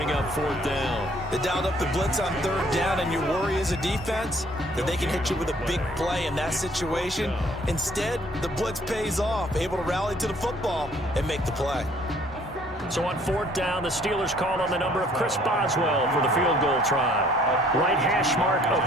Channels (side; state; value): both; normal; correlation 0.59